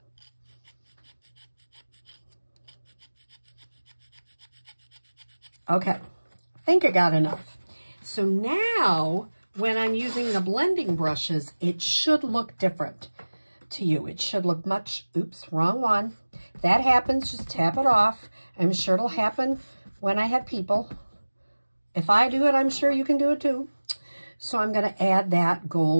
Okay, I think I got enough. So now, when I'm using the blending brushes, it should look different to you. It should look much, oops, wrong one. If that happens, just tap it off. I'm sure it'll happen when I have people. If I do it, I'm sure you can do it too. So I'm going to add that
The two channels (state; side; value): inverted; both; correlation -1.00